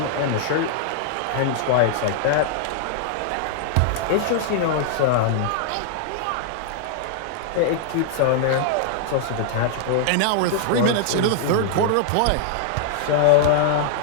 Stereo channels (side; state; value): both; different; correlation -0.01